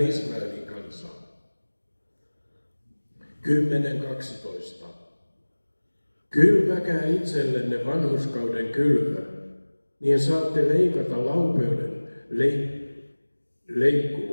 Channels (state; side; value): inverted; both; correlation -1.00